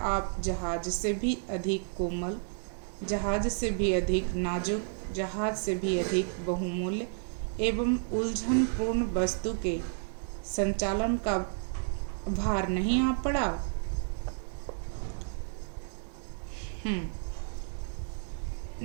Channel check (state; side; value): silent; left; digital silence